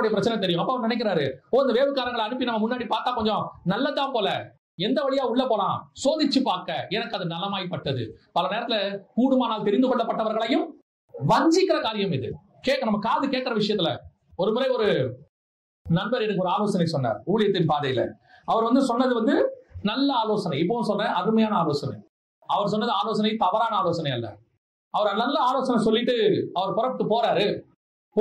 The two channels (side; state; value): both; identical; correlation 1.00